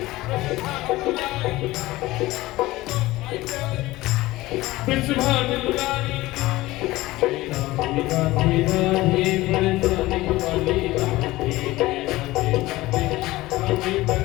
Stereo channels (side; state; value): right; quieter; 18.4 dB